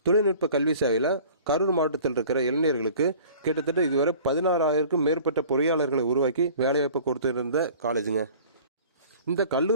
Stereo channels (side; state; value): both; inverted; correlation -0.47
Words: தொழில்நுட்ப கல்வி சேவையில் கரூர் மாவட்டத்தில் இருக்கிற இளைஞர்களுக்கு கிட்டத்தட்ட இதுவரை 16,000க்கும் மேற்பட்ட பொறியாளர்களை உருவாக்கி வேலைவாய்ப்பு கொடுத்துருந்த காலேஜுங்க. இந்த